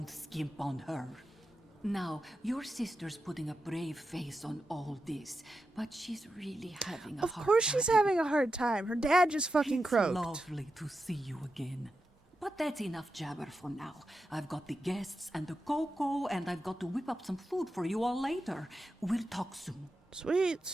skimp on her. Now, your sister's putting a brave face on all this, but she's really having a hard time. Of course she's having a hard time. Her dad just fucking croaked. It's lovely to see you again. But that's enough jabber for now. I've got the guests and the cocoa, and I've got to whip up some food for you all later. We'll talk soon.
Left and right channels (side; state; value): both; normal; correlation 0.89